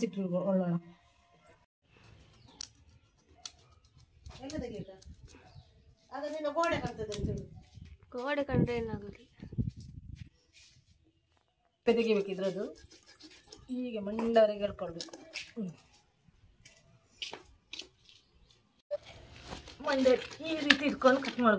ಗೋಡೆ ಕಂಡ್ರೆ ಏನಾಗುತ್ತೆ? ತೆಗಿಬೇಕು ಇದ್ರದ್ದು. ಹೀಗೆ ಮಂಡವರೆಗೆ ಹೇಳ್ಕೊಳ್ಬೇಕು. ಮಂಡೆ ಈ ರೀತಿ ಇಟ್ಕೊಂಡು ಕಟ್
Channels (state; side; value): identical; both; correlation 1.00